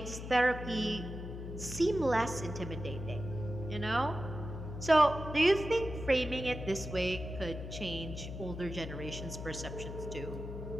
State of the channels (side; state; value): left; noise; hum, 8 dB below the sound